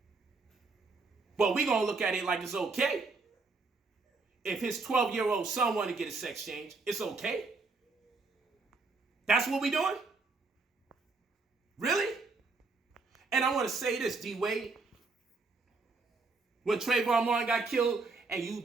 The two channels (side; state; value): left; quieter; 4.0 dB